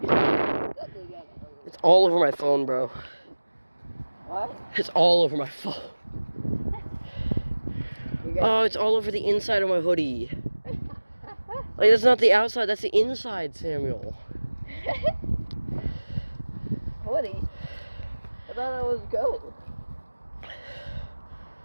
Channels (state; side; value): inverted; both; correlation -1.00